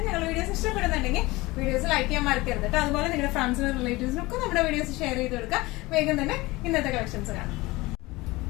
ഞങ്ങളുടെ വീഡിയോസ് ഇഷ്ടപ്പെടുന്നുണ്ടെങ്കിൽ വീഡിയോസ് ലൈക്ക് ചെയ്യാൻ മറക്കരുത് കേട്ടോ. അതുപോലെ നിങ്ങളുടെ ഫ്രണ്ട്സിനും റിലേറ്റീവ്സിനും ഒക്കെ നമ്മുടെ വീഡിയോസ് ഷെയർ ചെയ്ത് കൊടുക്കുക. വേഗം തന്നെ ഇന്നത്തെ കളക്ഷൻസ് കാണാം.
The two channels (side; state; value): right; quieter; 21.1 dB